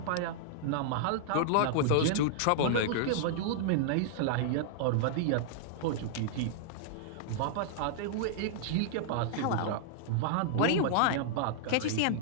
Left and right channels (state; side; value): different; both; correlation -0.01